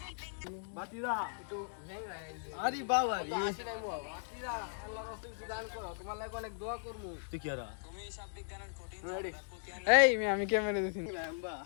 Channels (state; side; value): silent; right; digital silence